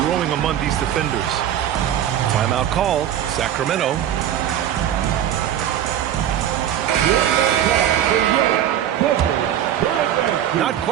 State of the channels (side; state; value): left; quieter; 10.7 dB